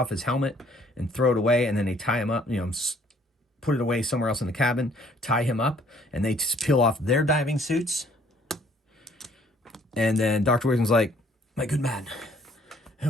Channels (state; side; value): normal; both; correlation 0.61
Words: his helmet and throw it away, and then they tie him up, put it away somewhere else in the cabin, tie him up, and they just peel off their diving suits. And then Dr. Wickham's like, "My good man, who